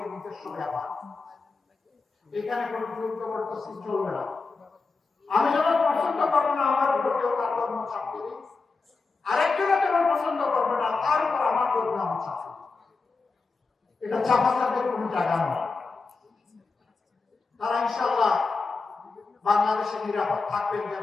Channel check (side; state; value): right; quieter; 4.2 dB